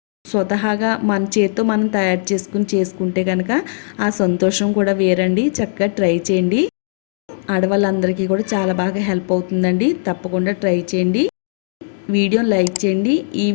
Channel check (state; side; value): silent; right; digital silence